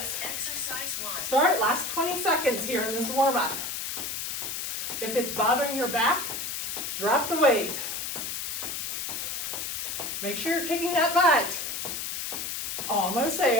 Exercise 1. Start, last 20 seconds here in this warm up. If it's bothering your back, drop the weight. Make sure you're kicking that butt. Almost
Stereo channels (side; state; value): left; noise; hiss, 4 dB below the sound